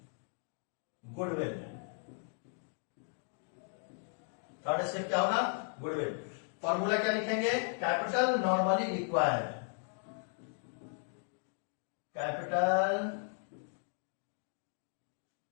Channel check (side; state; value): right; silent; 54 dB below the other